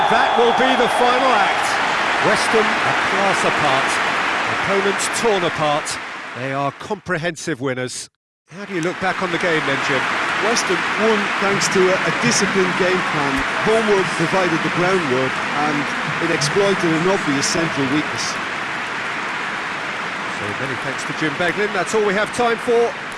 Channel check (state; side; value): identical; both; correlation 1.00